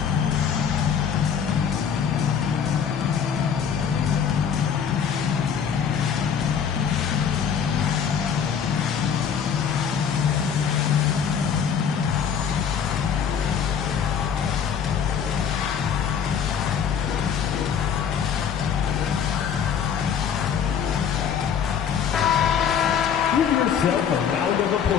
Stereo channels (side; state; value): right; quieter; 7.6 dB